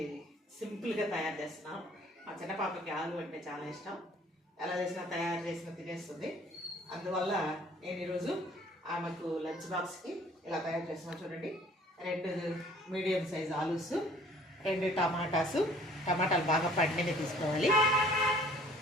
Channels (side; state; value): both; normal; correlation 0.55